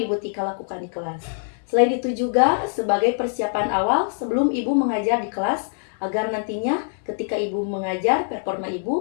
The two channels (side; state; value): right; silent; digital silence